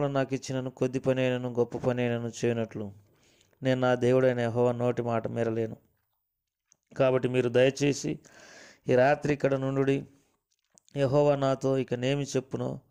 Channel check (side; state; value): both; identical; correlation 1.00